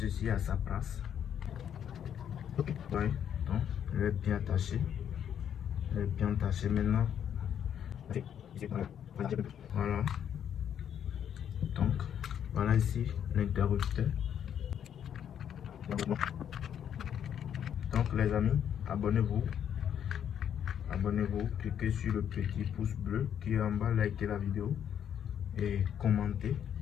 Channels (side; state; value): right; quieter; 9.1 dB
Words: à sa place. Ok. Ouais. Donc, il est bien attaché. Il est bien attaché maintenant. Voilà. Donc, voilà ici l'interrupteur. Donc les amis, abonnez-vous. Abonnez-vous, cliquez sur le petit pouce bleu qui est en bas, likez la vidéo et commentez